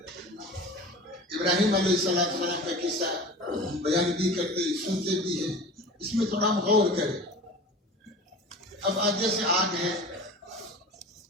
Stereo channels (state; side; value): normal; both; correlation 0.37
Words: ابراہیم علیہ السلام کا قصہ بیان بھی کرتے سنتے بھی ہیں، اس میں تھوڑا ہم غور کریں. اب آگے سے آگ ہے،